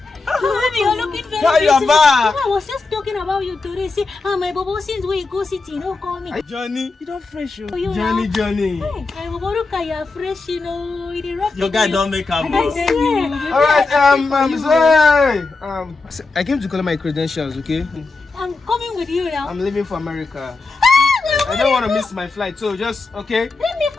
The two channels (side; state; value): right; quieter; 3.8 dB